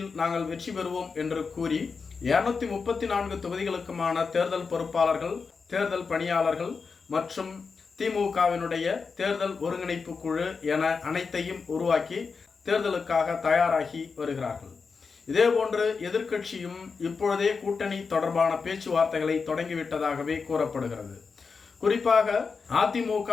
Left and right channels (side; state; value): right; quieter; 5.1 dB